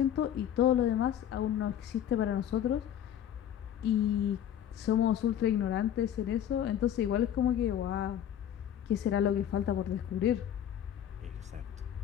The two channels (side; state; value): right; quieter; 10.3 dB